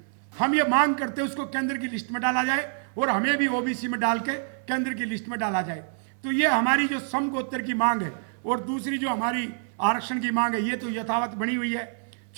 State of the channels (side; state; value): left; silent; 60 dB below the other